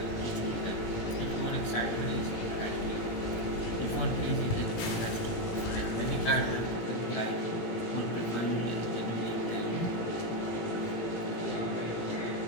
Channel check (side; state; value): right; late; 18 ms